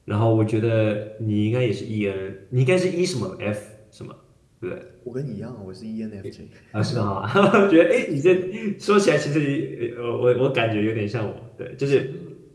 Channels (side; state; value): both; identical; correlation 1.00